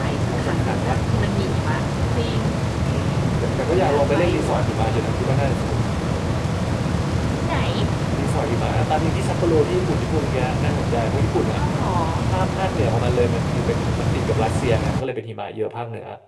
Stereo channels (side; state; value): both; identical; correlation 1.00